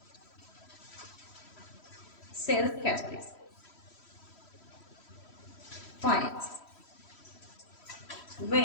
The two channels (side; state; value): right; late; 3.1 ms